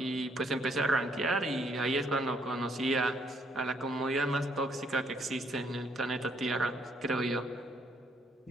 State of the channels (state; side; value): normal; both; correlation 0.69